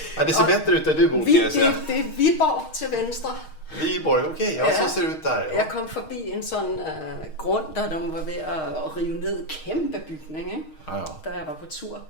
Ja, det ser bättre ut där du bor kan jag säga. Det er Viborg til venstre. Viborg, okej. Ja, så ser det ut där. Ja. Jeg kom forbi en sådan grund, der de var ved at rive ned kæmpe bygning, ikke? Ja. Da jeg var på tur.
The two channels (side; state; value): right; late; 6.4 ms